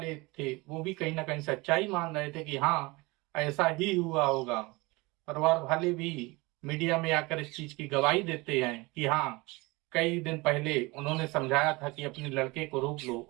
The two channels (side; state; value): left; quieter; 23.8 dB